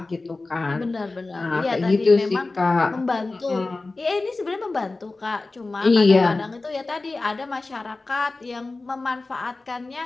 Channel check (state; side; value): quieter; right; 3.4 dB